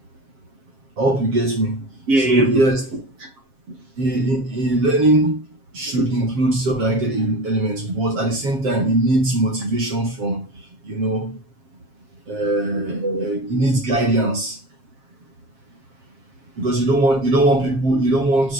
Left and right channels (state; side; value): late; left; 7.5 ms